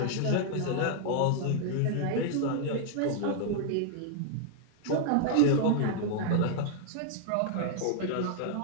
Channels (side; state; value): both; different; correlation -0.01